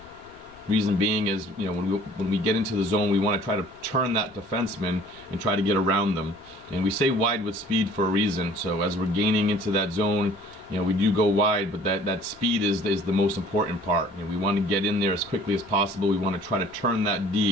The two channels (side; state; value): both; normal; correlation 0.52